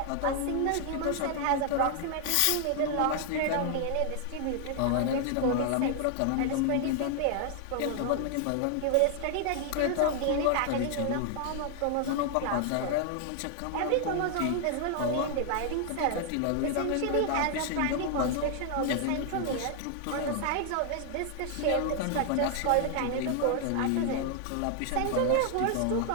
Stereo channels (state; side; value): different; both; correlation 0.00